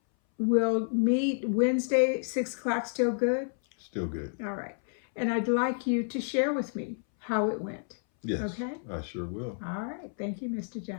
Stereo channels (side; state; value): right; silent; 58 dB below the other